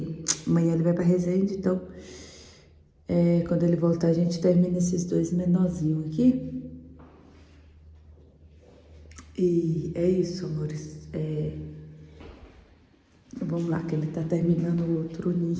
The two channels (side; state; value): both; identical; correlation 1.00